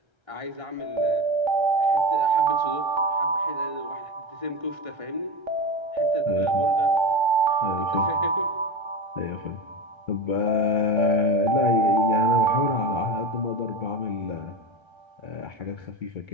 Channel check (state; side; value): late; left; 1.3 ms